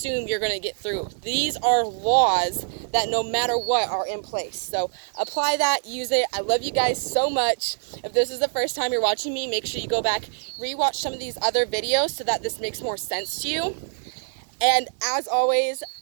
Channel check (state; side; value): silent; left; 61 dB below the other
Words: you're going to get through. These are laws that no matter what are in place. So apply that, use it. I love you guys so much. If this is the first time you're watching me, make sure you go back, rewatch some of these other videos so that this makes more sense to you. And as always,